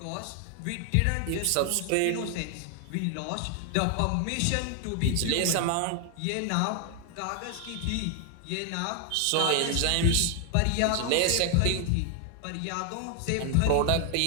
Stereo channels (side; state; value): both; different; correlation 0.00